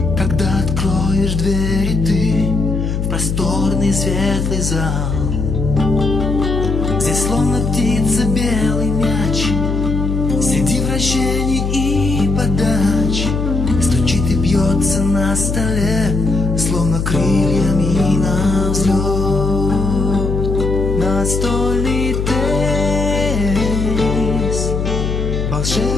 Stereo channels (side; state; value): left; noise; hum, 1 dB below the sound